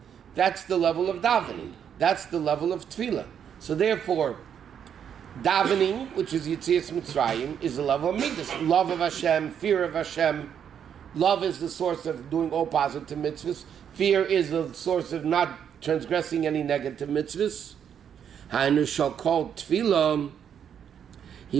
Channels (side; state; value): left; quieter; 8.4 dB